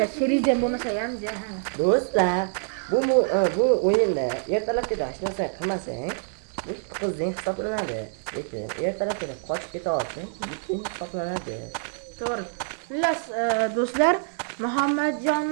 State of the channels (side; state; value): left; silent; digital silence